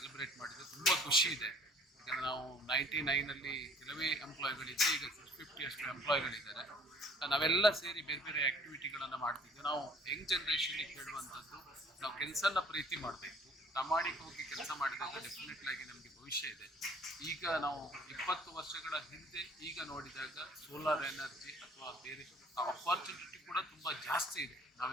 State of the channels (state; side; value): normal; both; correlation 0.54